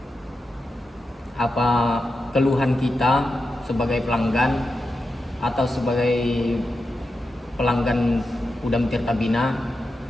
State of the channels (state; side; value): normal; both; correlation 0.89